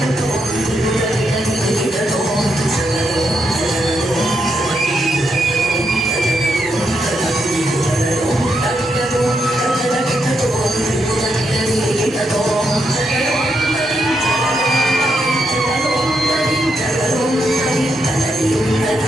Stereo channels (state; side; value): normal; both; correlation 0.81